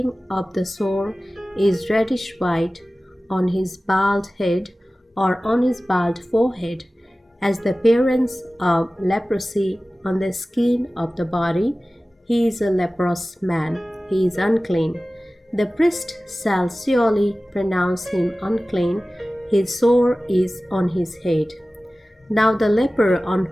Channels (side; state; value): both; normal; correlation 0.97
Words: of the sore is reddish white on his bald head or on his bald forehead, as the appearance of leprosy on the skin of the body, he is a leprous man. He is unclean. The priest shall surely pronounce him unclean. His sore is on his head. Now the leper on